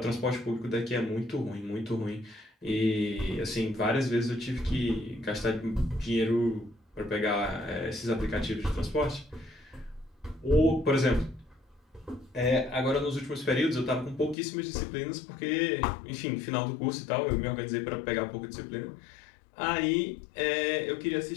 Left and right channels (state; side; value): drops out; right; at 14.4 s